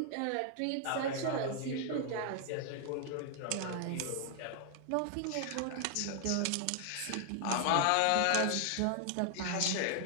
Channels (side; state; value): both; different; correlation 0.00